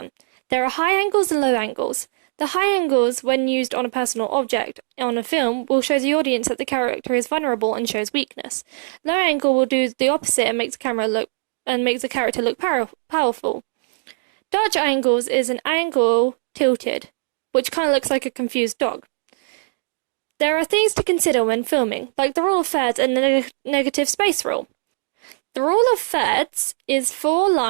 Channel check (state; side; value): silent; left; digital silence